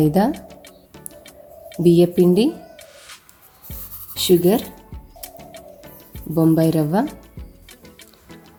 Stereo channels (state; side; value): identical; both; correlation 1.00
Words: బియ్యపిండి, షుగర్, బొంబాయి రవ్వ,